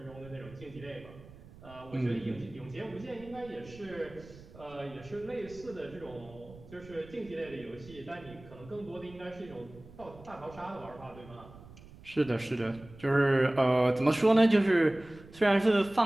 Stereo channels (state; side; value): noise; right; rumble, 20 dB below the sound